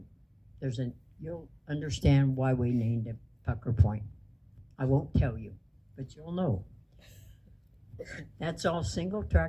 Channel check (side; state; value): both; identical; correlation 1.00